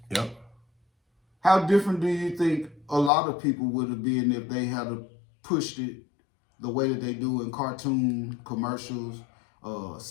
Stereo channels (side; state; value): right; drops out; at 3.1 s